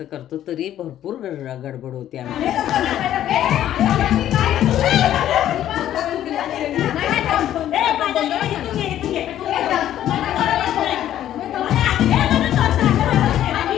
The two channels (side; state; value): right; quieter; 11.8 dB